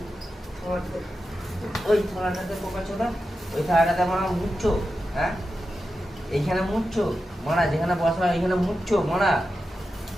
থালাটাতে, ওই থালাটাতে বোকাচ্ছো না, ওই থালাটাতে মারা মুচ্ছো। হ্যাঁ এইখানে মুচ্ছো মারা, যেখানে বসা এইখানে মুচ্ছো মারা।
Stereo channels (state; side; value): normal; both; correlation 0.90